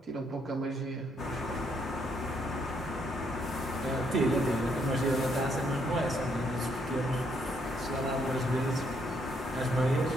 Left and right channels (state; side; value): normal; both; correlation 0.72